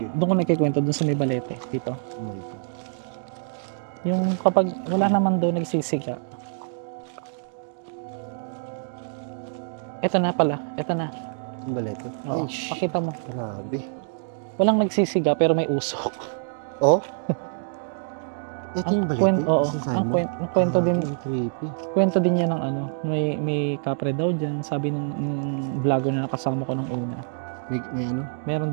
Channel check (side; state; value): left; silent; digital silence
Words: doon ko nagkikwento doon sa may balete dito. Oh my God. Yung kapag wala naman doon nagsisiga. Ito na pala. Ito na. Ang balete. Oo. Ay, shh. Pakita mo. Grabe. Walang nagsisiga pero may usok. Oh? Ito yung balete? Oo. Sinasabi Ang mo? kwento din. Ang creepy. Kwento din niya ng ano. May kapre daw dyan. Sabi ng vlogger na nakasama ko nung una. May ano?